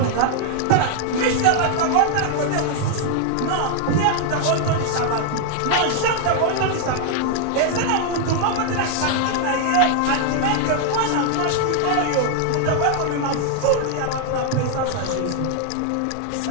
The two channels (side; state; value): both; different; correlation 0.00